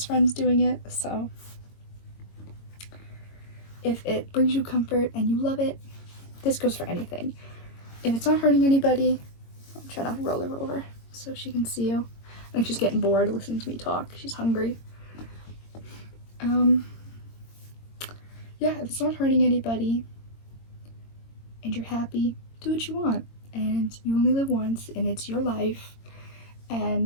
friends doing it, so if it brings you comfort and you love it, this goes for anything. If it's not hurting anybody, I'm trying to roll her over so she can see you. I think she's getting bored listening to me talk. She's hungry. Yeah, if it's not hurting anybody and you're happy, do what you want. And you only live once, and it's your life.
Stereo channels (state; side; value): late; right; 22 ms